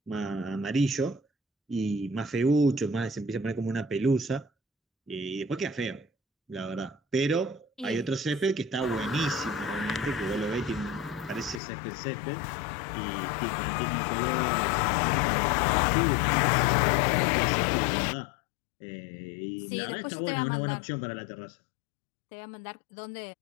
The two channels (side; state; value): right; drops out; at 11.6 s